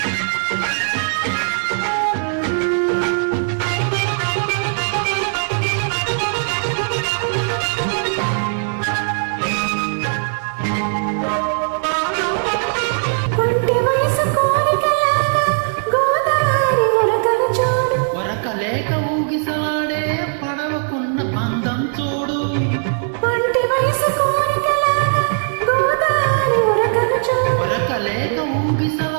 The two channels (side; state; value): left; silent; 62 dB below the other